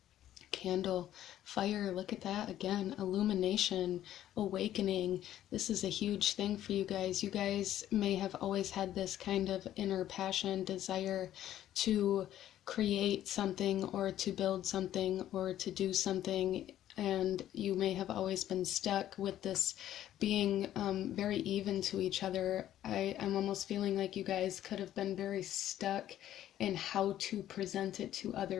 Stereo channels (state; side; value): quieter; right; 12.3 dB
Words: Candle, fire, look at that again, illumination, awakening. This is a huge thing for you guys. You guys may have always had this kind of inner passion, desire to create something or to build something or to do something, and you may have always been stuck with this being very even to each other. I'm almost feeling like you guys could have been very stuck in how to present it to other